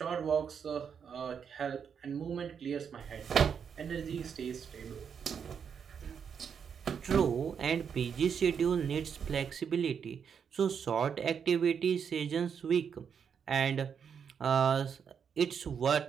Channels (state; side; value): quieter; left; 7.1 dB